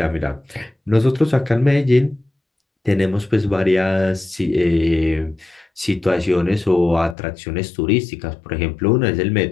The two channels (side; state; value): right; drops out; at 7.2 s